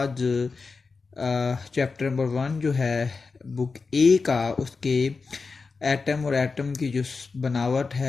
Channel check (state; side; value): quieter; right; 4.5 dB